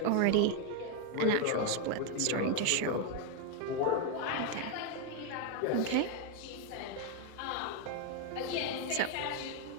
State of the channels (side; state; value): both; different; correlation 0.01